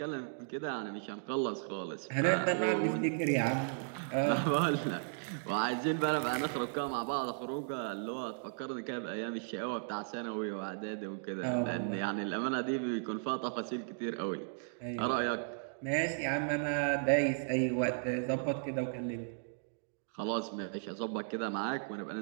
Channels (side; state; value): left; silent; digital silence